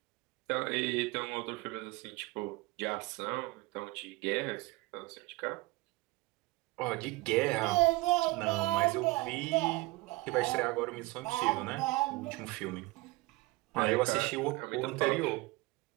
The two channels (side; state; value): left; quieter; 21.5 dB